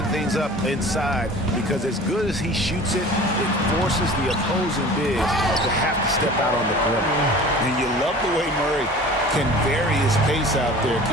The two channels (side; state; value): both; normal; correlation 0.42